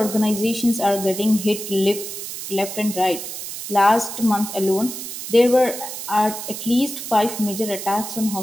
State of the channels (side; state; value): right; noise; hiss, 8 dB below the sound